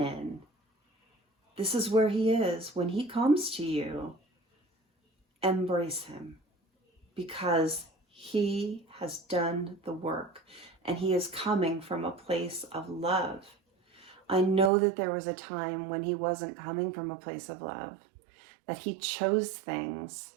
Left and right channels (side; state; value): left; drops out; at 14.7 s